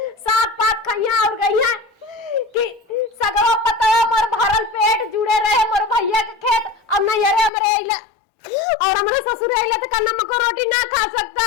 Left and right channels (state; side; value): drops out; right; at 7.5 s